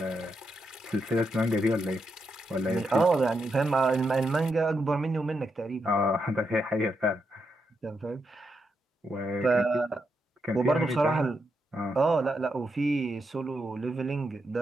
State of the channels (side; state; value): both; normal; correlation 0.83